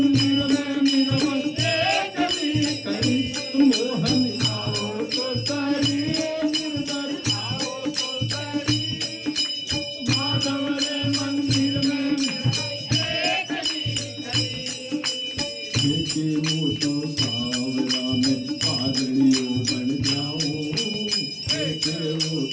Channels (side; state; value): both; identical; correlation 1.00